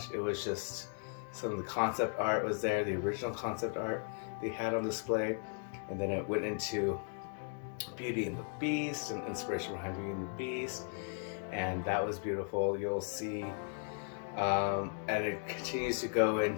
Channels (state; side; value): silent; right; 53 dB below the other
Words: it was just, some of the concept art was there, the original concept art they had on display. And then it went into Beauty and the Beast and inspiration behind Beauty and the Beast. And that was beautiful. You'll see, and it continues to go